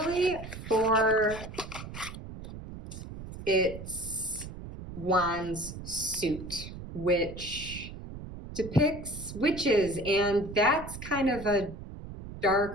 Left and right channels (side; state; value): right; noise; rumble, 11 dB below the sound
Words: for It's Juan's suit, which depicts witches, and that's kind of a